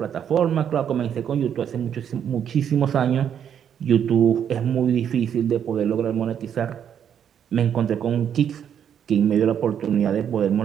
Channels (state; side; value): quieter; left; 8.8 dB